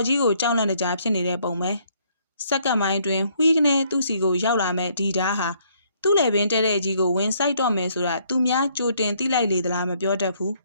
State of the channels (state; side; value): inverted; both; correlation -0.67